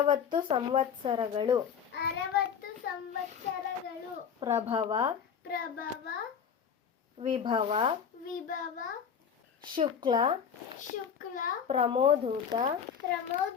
ಸಂವತ್ಸರಗಳು ಪ್ರಭವ ವಿಭವ ಶುಕ್ಲ ಪ್ರಮೋದೂತ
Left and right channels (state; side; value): quieter; right; 7.4 dB